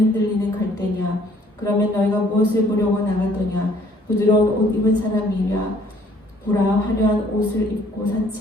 갈대냐 그러면 너희가 무엇을 보려고 나갔더냐? 부드러운 옷 입은 사람이랴. 보라, 화려한 옷을 입고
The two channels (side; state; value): both; normal; correlation 0.60